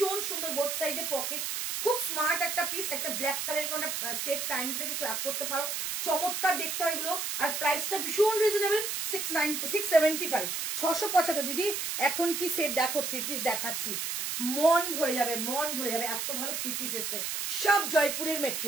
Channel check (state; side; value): noise; right; hiss, 2 dB below the sound